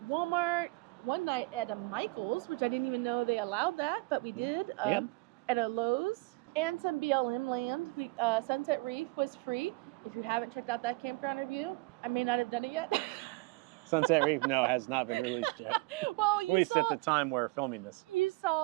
Walmart, one night at a Michael's, which I didn't even know they allowed that, but we did. At a Lowe's, and some BLM land. Sunset Reef was free. If you haven't checked out that campground review, I may not have done it yet. Sunset Reef, no, has not been released yet. Well, at the time we're filming this. You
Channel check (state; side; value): quieter; left; 24.6 dB